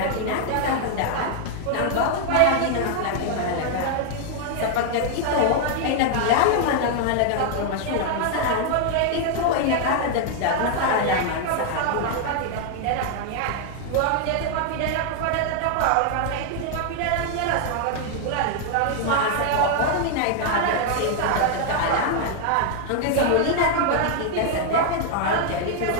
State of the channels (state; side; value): different; both; correlation 0.00